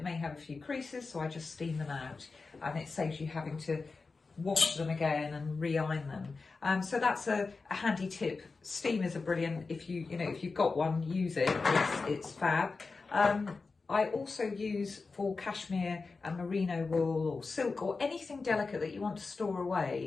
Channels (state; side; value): quieter; right; 4.2 dB